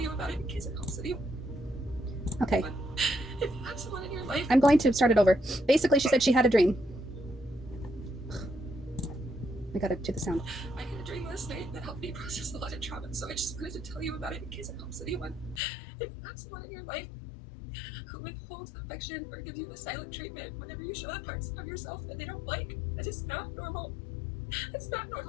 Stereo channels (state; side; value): drops out; right; at 15.6 s